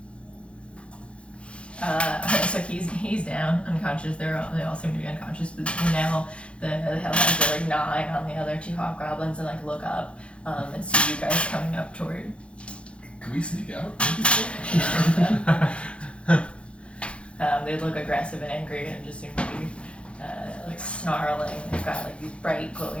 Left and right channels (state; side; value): late; right; 0.059 ms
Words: So he's down, unconscious. They all seem to be unconscious, but now the hellhounds are like gnawing on the other two hobgoblins and like look up and see you guys coming up toward. Can we sneak out? They look aggressive and angry and just seem to be like snarling. They've got like these bright